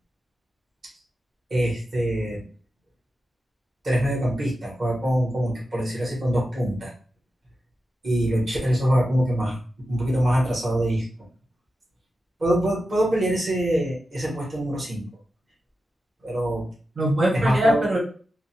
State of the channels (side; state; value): both; normal; correlation 0.91